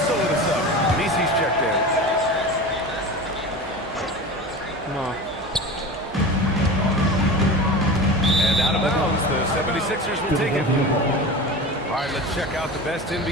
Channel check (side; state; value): both; normal; correlation 0.31